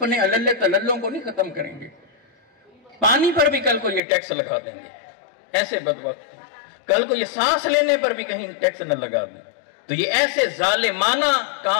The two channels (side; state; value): right; drops out; at 4.0 s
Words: اللے تللوں کو نہیں ختم کریں گے، پانی پر بھی کل کو یہ ٹیکس لگا دیں گے، ایسے بدبخت، کل کو یہ سانس لینے پر بھی کہیں ٹیکس نہ لگا دیں، تو یہ ایسے ظالمانہ